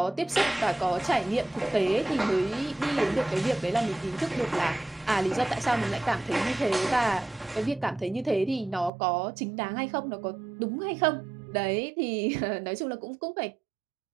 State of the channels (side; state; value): left; drops out; at 8.9 s